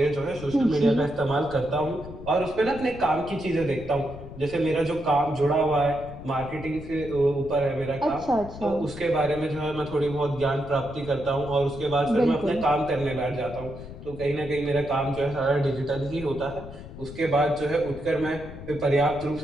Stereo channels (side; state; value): left; noise; rumble, 13 dB below the sound